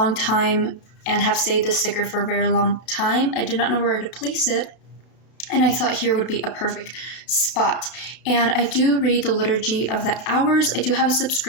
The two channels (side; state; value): right; late; 31 ms